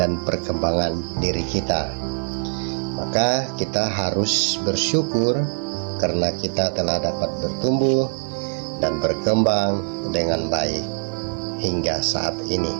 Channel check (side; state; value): left; silent; 64 dB below the other